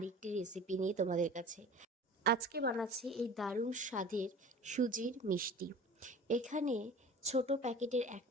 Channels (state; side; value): normal; both; correlation 0.41